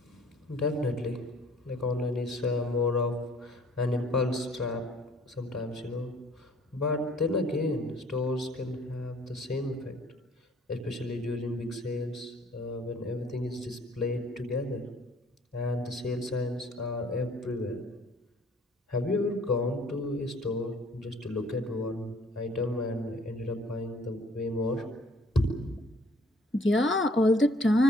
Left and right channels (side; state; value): both; normal; correlation 0.58